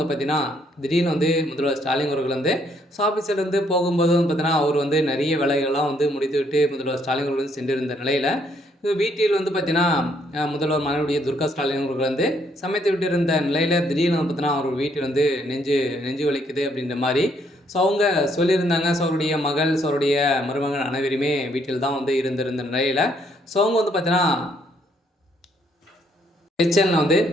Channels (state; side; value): normal; both; correlation 0.70